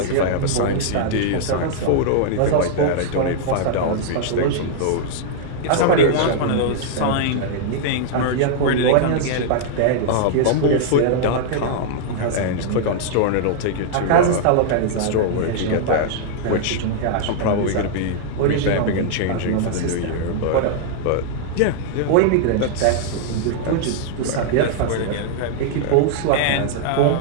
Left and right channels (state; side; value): different; both; correlation -0.01